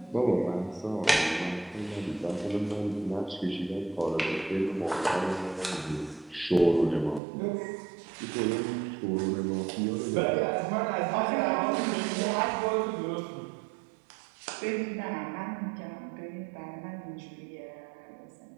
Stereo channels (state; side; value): drops out; left; at 7.2 s